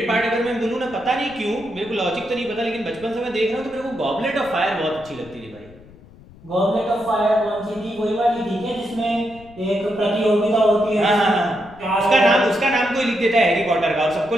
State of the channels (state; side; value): noise; left; rumble, 22 dB below the sound